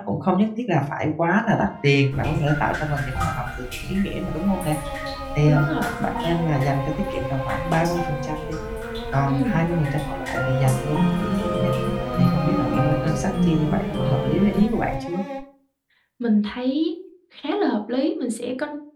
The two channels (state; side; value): identical; both; correlation 1.00